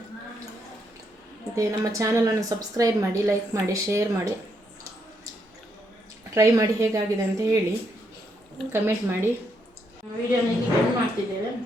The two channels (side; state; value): both; normal; correlation 0.77